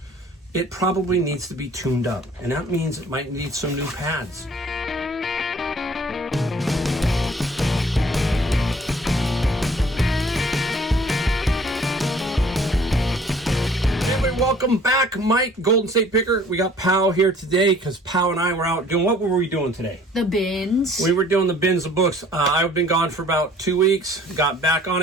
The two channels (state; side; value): normal; both; correlation 0.54